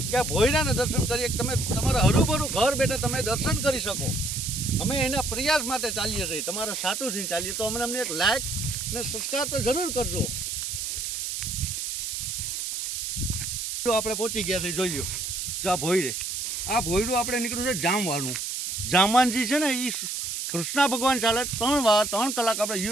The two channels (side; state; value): right; noise; hiss, 3 dB below the sound